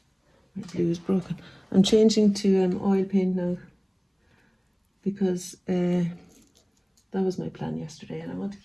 my blue is broken, I'm changing to oil paint now because that was my plan yesterday, and I want to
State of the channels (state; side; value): identical; both; correlation 1.00